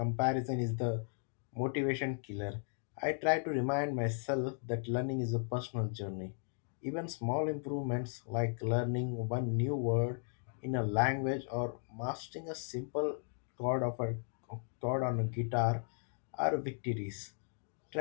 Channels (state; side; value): silent; right; digital silence